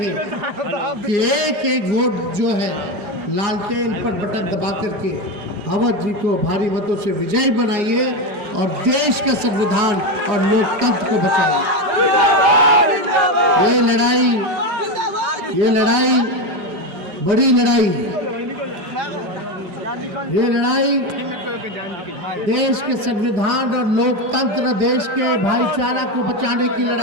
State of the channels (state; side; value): late; left; 4.9 ms